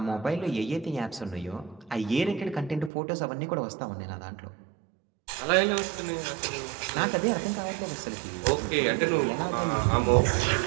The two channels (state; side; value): drops out; left; at 2.9 s